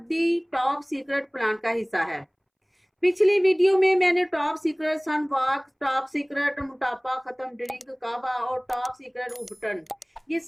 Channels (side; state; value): both; identical; correlation 1.00